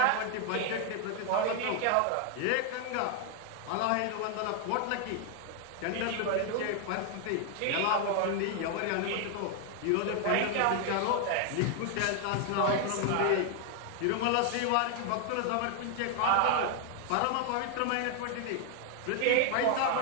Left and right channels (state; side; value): different; both; correlation 0.00